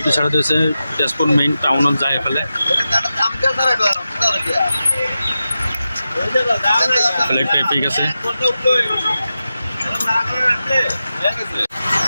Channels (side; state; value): both; inverted; correlation -0.92